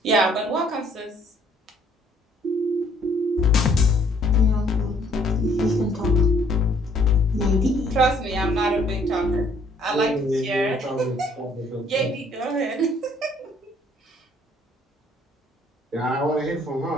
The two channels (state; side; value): normal; both; correlation 0.63